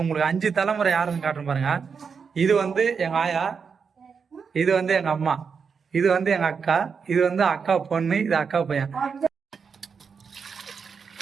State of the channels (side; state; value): left; quieter; 5.9 dB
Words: உங்களுக்கு 5 தலைமுறை யாருன்னு காட்டுறேன் பாருங்க. இது வந்து எங்க ஆயா, இது வந்து எங்க அம்மா, இது வந்து எங்க அக்கா, இது வந்து அக்கா பொண்ணு, இது அக்கா பையன்.